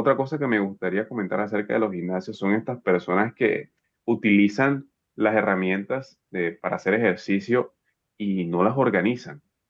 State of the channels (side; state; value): both; identical; correlation 1.00